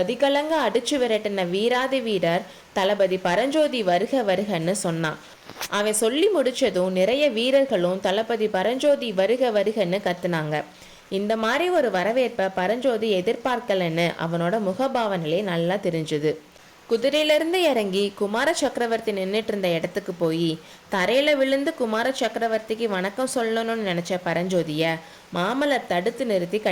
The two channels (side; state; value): both; identical; correlation 1.00